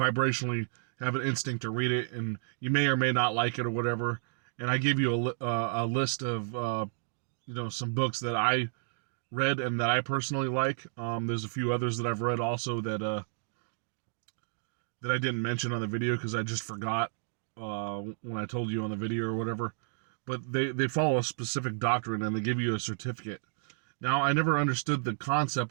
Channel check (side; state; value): left; silent; digital silence